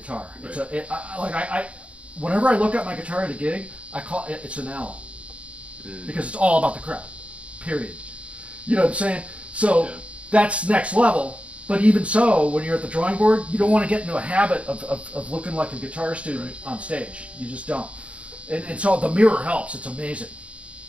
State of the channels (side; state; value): left; late; 0.062 ms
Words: Right. It's whenever I look at my guitar at a gig, I call it's an L, because it's all about the crowd. Period. You know what I'm saying? So that's next level. But even so, when you're at the drawing board, you don't want to get into a habit of looking like a guitar student on stage. You just don't. And so the mirror helps. It's amazing.